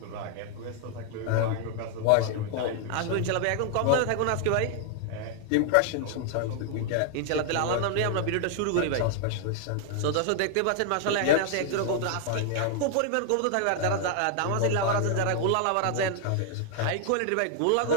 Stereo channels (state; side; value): different; both; correlation 0.00